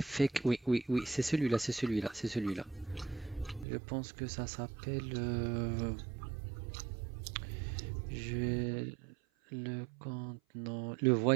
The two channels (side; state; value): left; drops out; at 3.7 s